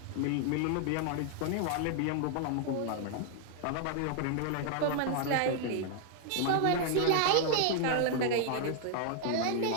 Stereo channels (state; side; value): different; both; correlation 0.00